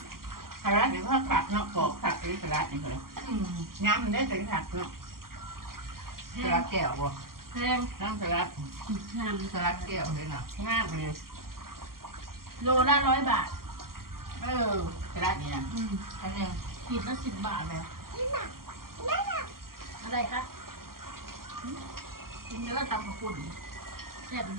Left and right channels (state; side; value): late; left; 0.92 ms